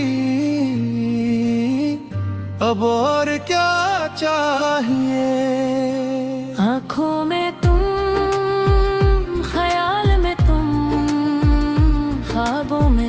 अब और क्या चाहिए। आँखों में तुम, ख्याल में तुम, ख्वाबों में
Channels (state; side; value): identical; both; correlation 1.00